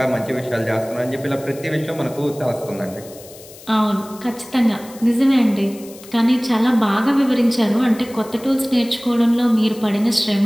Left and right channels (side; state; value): left; noise; hiss, 20 dB below the sound